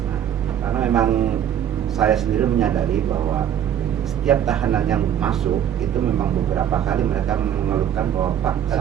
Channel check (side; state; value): left; quieter; 9.7 dB